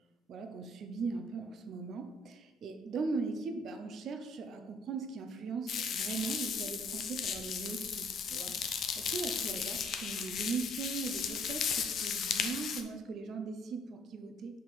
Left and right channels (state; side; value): normal; both; correlation 0.62